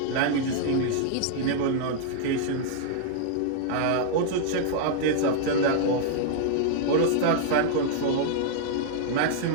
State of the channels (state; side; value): different; both; correlation -0.01